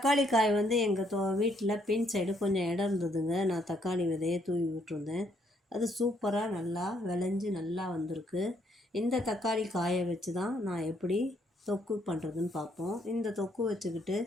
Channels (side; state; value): both; normal; correlation 0.71